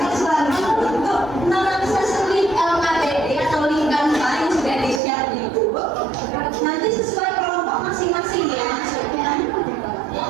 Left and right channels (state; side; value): drops out; left; at 5.0 s